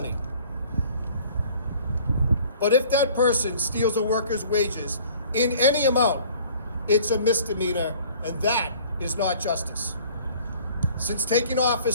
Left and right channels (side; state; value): both; inverted; correlation -0.51